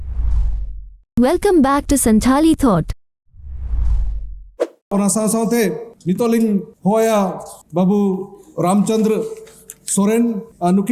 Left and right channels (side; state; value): both; identical; correlation 1.00